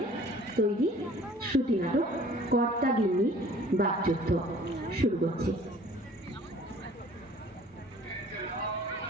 তৈরি শ্রুতি নাটক কর্তা গিন্নি বাকযুদ্ধ। শুরু করছি।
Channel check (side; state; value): both; normal; correlation 0.51